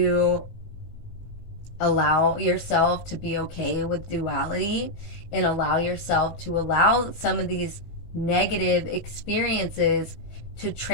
allow yourself to be okay with duality and allow yourself to allow some of these negative experiences to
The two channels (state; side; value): late; right; 18 ms